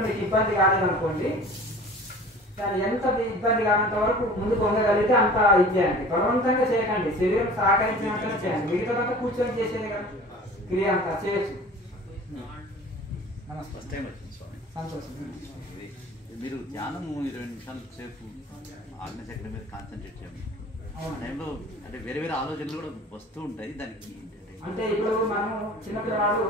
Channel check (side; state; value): both; normal; correlation 0.43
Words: మీకు ఇబ్బంది కాలేదనుకోండి, దాన్ని ఎంత ఇబ్బంది కానంత వరకు ముందు పొందగలిగితే అంత ఇచ్చేయండి. బలవంతంగా చేయకండి, శరీరం సహకరించినంతనే చేయండి. మిగతాదంతా కూర్చొని చేసేది కదా క్రియ అంతా చేయొచ్చు. నమస్తే సంతోషం. మీరు ధ్యానం 20 నిమిషాల సేపు ఆజ్ఞచక్ర మీద కాన్సన్ట్రేట్ చేయండి. ఆ టైంలో అంటే వేరే ఆలోచనలు కూడా వస్తూ ఉంటాయి. దానికి అంటే ఇప్పుడు మనం చిన్నపిల్లవాడు